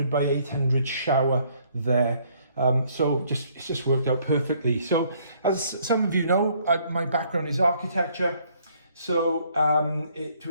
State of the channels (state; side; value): inverted; both; correlation -0.65